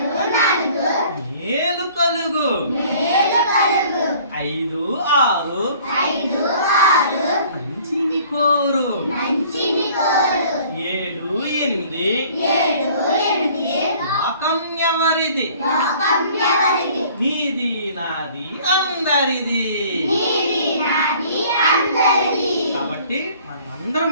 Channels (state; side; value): inverted; both; correlation -0.53